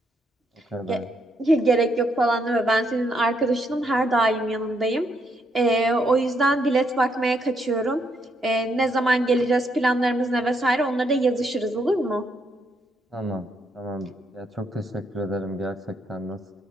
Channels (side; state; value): both; normal; correlation 0.75